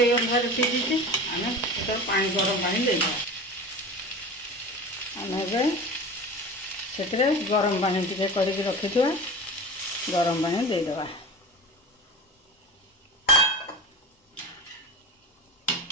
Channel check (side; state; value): both; normal; correlation 0.33